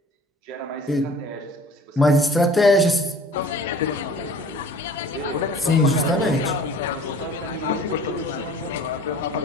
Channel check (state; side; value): normal; both; correlation 0.47